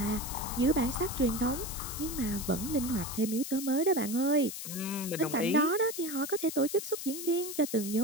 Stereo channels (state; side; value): noise; left; hiss, 8 dB below the sound